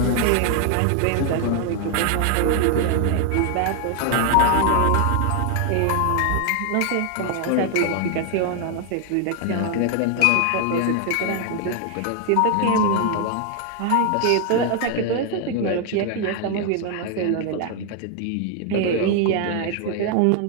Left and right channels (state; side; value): different; both; correlation 0.00